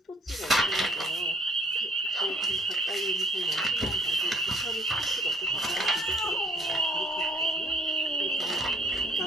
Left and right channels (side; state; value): both; normal; correlation 0.59